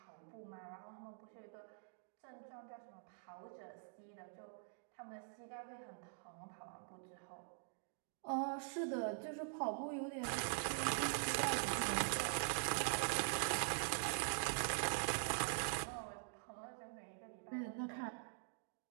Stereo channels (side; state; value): left; silent; digital silence